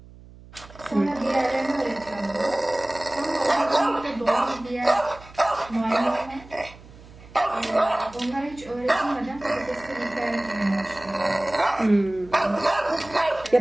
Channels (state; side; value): noise; right; hum, 20 dB below the sound